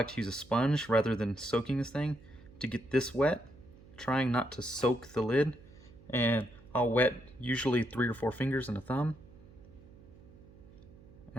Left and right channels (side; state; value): right; noise; hum, 22 dB below the sound